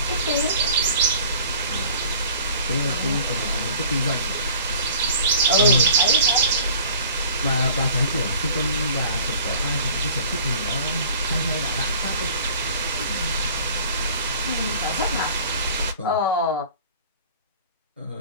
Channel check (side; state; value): both; inverted; correlation -0.47